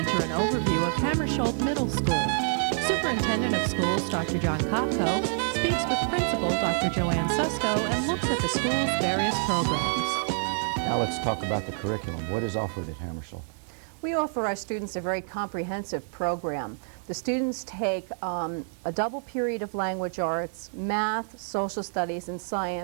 an overview of Hammersholt Middle School. Superintendent of Schools, Dr. John Kopko, speaks with Principal Dr. Joanne Susko and looks at the school's various programs. Now let's talk about the curriculum. What is offered at Hammarskjold? We offer our students a very comprehensive program. The students take a double period of language arts, math, social studies, and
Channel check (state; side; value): silent; left; digital silence